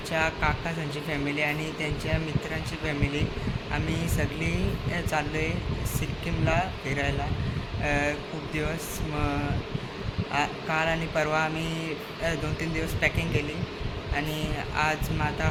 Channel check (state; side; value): identical; both; correlation 1.00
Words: काकासांची फॅमिली आणि त्यांच्या मित्रांची फॅमिली आम्ही सगळी चाललो आहे सिक्कीमला फिरायला. खूप दिवस काल आणि परवा आम्ही 2-3 दिवस पॅकिंग केली आणि आज मग आता